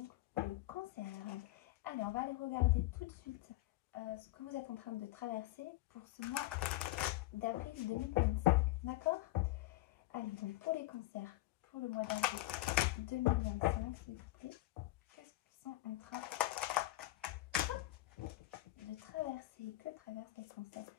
le cancer. Allez, on va aller regarder tout de suite ce que vous êtes en train de traverser pour ce mois d'avril 2025, d'accord? Allez, donc pour les cancers, pour le mois d'avril 2025, s'il vous plaît, qu'est-ce qu'ils sont en train de traverser? Que traversent les cancers?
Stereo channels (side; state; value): right; quieter; 17.5 dB